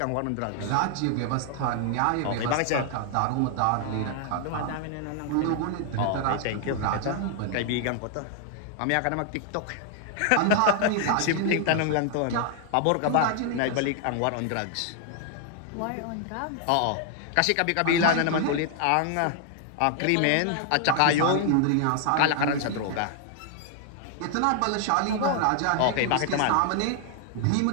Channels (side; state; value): both; different; correlation 0.00